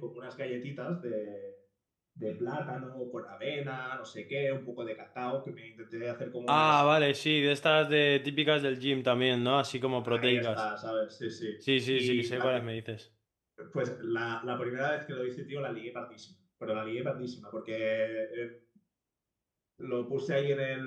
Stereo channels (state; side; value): identical; both; correlation 1.00